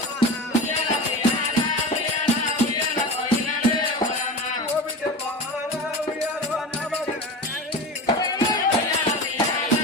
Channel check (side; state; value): both; normal; correlation 0.30